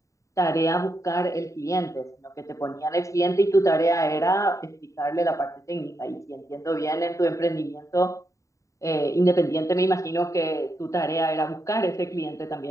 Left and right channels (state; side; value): late; right; 0.16 ms